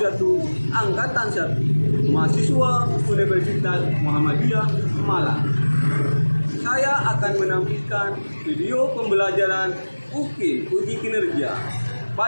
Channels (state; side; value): inverted; both; correlation -1.00